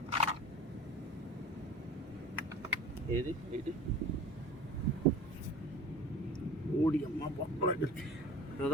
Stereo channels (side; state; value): both; normal; correlation 0.40